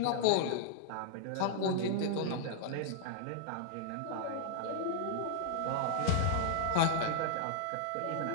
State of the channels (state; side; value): different; both; correlation -0.01